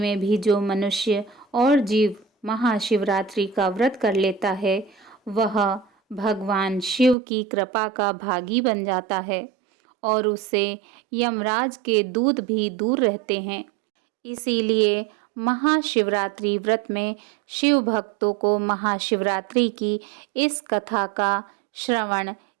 भी जो मनुष्य और जीव महाशिवरात्रि का व्रत कर लेता है वह भगवान शिव की कृपा का भागी बन जाता है और उससे यमराज के दूत भी दूर रहते हैं। इसीलिए महाशिवरात्रि व्रत में शिव भक्तों को महाशिवरात्रि की इस कथा का श्रवण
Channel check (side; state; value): left; drops out; at 7.2 s